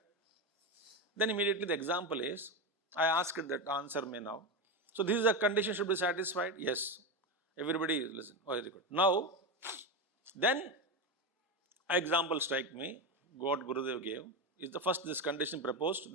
Then immediately the example is, I asked that, answer me now. So this is a condition should be satisfied? Yes. Everybody listen. Oh, very good. Now, then example strike me, what Gurudev gave, is the first this condition proposed,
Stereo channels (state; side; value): normal; both; correlation 0.15